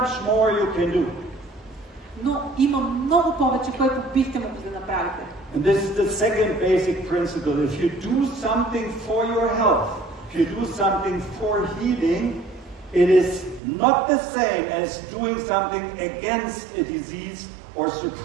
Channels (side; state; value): left; drops out; at 13.6 s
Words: more you can do. Но има много повече, което бихте могли да направите. And this is the second basic principle. If you do something for your health, if you do something for healing, it is not the same as doing something against a disease or